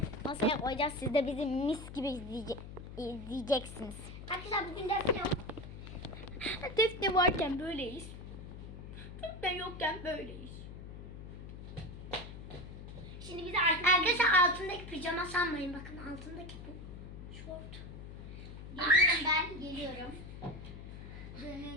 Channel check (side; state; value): left; noise; hum, 11 dB below the sound